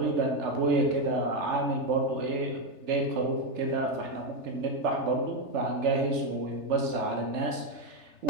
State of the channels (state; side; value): late; left; 3.3 ms